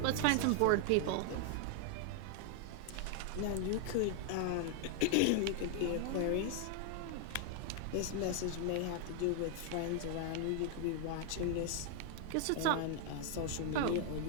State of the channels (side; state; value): both; different; correlation 0.00